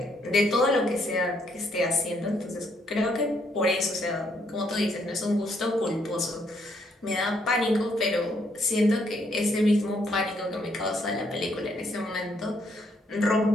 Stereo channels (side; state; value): both; normal; correlation 0.72